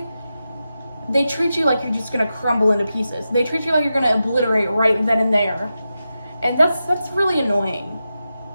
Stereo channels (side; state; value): both; inverted; correlation -0.90